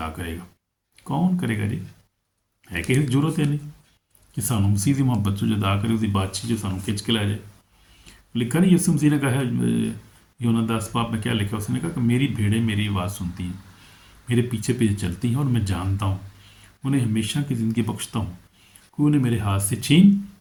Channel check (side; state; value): both; identical; correlation 1.00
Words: करेगा? कौन करेगा जी? है कि जरूरत है नहीं कि सानू मसीह की मोहब्बत से जुदा करे, उसकी बातचीत जो सानू खिंच के लै जाए। लिखा नहीं यसु मसीह ने कहा है यूहन्ना 10 में क्या लिखा? उसने कहा कि मेरी भेड़ें मेरी आवाज़ सुनती हैं, मेरे पीछे पीछे चलती हैं और मैं जानता हूँ, उन्हें हमेशा की ज़िंदगी बख्शता हूँ, कोई उन्हें मेरे हाथ से छीन